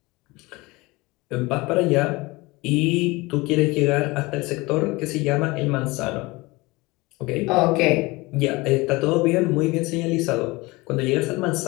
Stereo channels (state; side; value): quieter; right; 22.9 dB